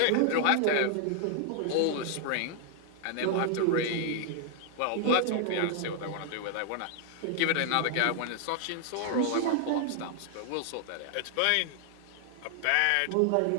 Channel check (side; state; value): both; different; correlation 0.00